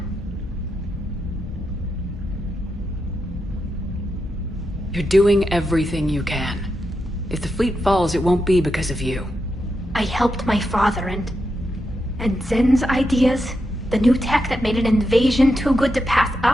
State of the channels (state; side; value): normal; both; correlation 0.86